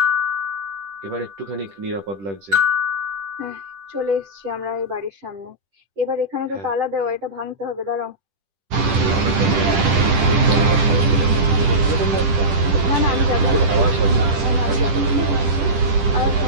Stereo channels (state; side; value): late; left; 10 ms